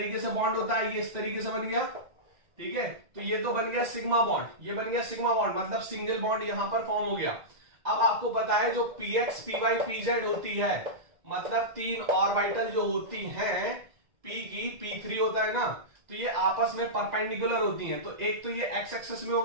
से बॉन्ड होता है, ये इस तरीके से बन गया, ठीक है। तो ये तो बन गया सिग्मा बॉन्ड, ये बन गया सिग्मा बॉन्ड, मतलब सिंगल बॉन्ड यहां पर फॉर्म हो गया। अब आपको पता है जो px py pz होती है, मतलब 3 ऑर्बिटल जो होती हैं, p की p3 होता है ना, तो ये आपस में परपेंडिकुलर होती हैं। तो एक तो ये x एक्सिस में हो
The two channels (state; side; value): late; left; 2.0 ms